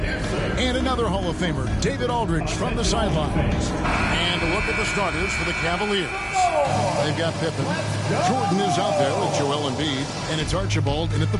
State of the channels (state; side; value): identical; both; correlation 1.00